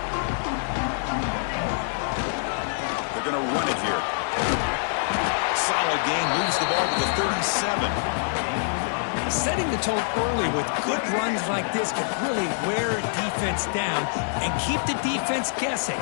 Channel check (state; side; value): silent; right; digital silence